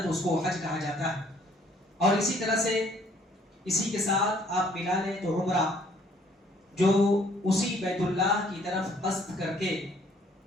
اس کو حج کہا جاتا ہے. اور اسی طرح سے اسی کے ساتھ آپ ملا لیں تو عمرہ، جو اسی بیت اللہ کی طرف قصد کر کے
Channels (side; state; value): both; normal; correlation 0.62